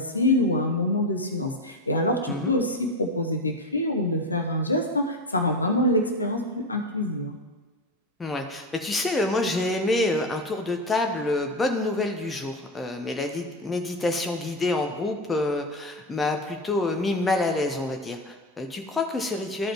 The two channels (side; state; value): both; normal; correlation 0.17